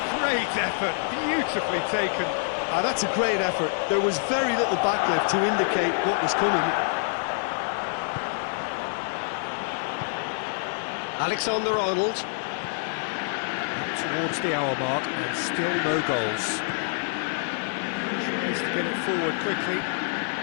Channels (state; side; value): silent; right; 61 dB below the other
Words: Great effort, beautifully taken. That's a great effort. There was very little backlift to indicate what was coming. Alexander-Arnold. Up towards the hour mark and still no goals. Tries to get it forward quickly.